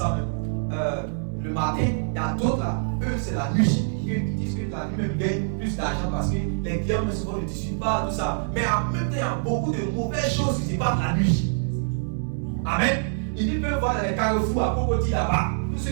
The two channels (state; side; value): silent; left; digital silence